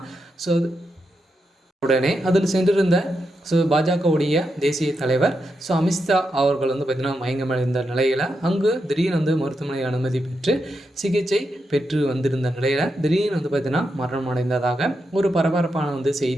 உடனே அதில் சென்றிருந்த பாஜகவுடைய தேசிய தலைவர் அமித்ஷா அவர்கள் பார்த்திங்கன்னா மயங்கமடைந்த நிலையில் அங்கு திடீர்னு மருத்துவமனை அனுமதி பெற்று சிகிச்சை பெற்று வந்திருந்த நிலையில் திடீர்னு பார்த்திங்கன்னா மரணம் அடைந்ததாக ஒரு பரபரப்பான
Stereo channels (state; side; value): normal; both; correlation 0.85